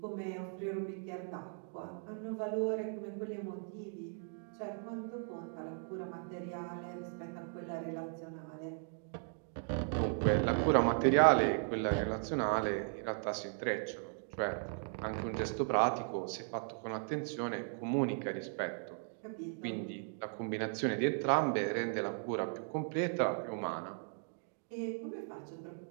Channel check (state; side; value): silent; left; 53 dB below the other